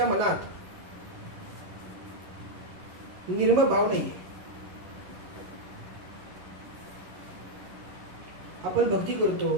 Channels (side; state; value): left; late; 11 ms